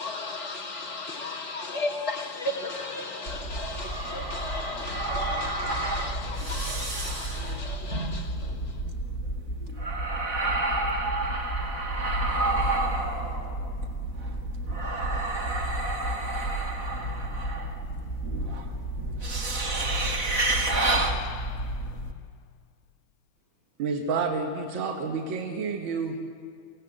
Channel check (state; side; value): late; right; 4.1 ms